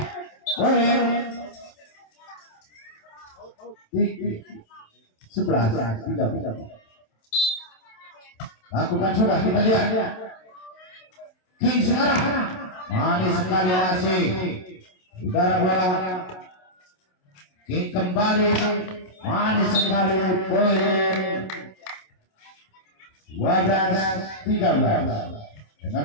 poin 11-13. Lakukan sudah, kita lihat. King sekarang manis sekali masih. Udara bola. King kembali manis sekali. Poin 12-13.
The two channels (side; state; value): right; late; 27 ms